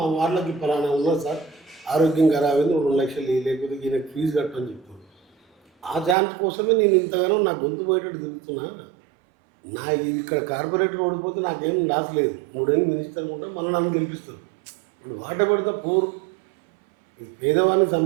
వాళ్ళకి పలానా ఉన్నా సార్ ఆరోగ్యం ఖరాబైంది 2 లక్షలు లేకపోతే ఈయనకి ఫీజు కట్టని చెప్తాను. ఆ ఛాన్స్ కోసమే నేను ఇంతగానో నా గొంతు పోయేటట్టు తిరుగుతున్నా. నా ఇక్కడ కార్పొరేటర్ ఓడిపోతే నాకేం లాస్ లేదు. 3 ఏళ్ళు మినిస్టర్ ఉంటారు, మళ్ళీ నన్ను గెలిపిస్తారు. ఇప్పుడు వాట పెడితే పూర్ పేదవానికి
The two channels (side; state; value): left; drops out; at 6.2 s